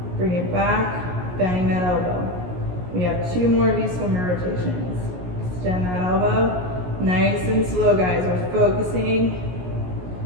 Bring it back. Bending that elbow. We have 2 more of these swimmer rotations. Extend that elbow. Nice and slow, guys. We're focusing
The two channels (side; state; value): left; late; 17 ms